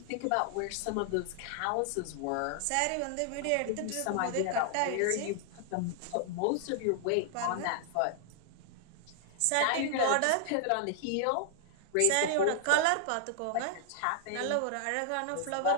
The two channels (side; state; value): both; different; correlation 0.00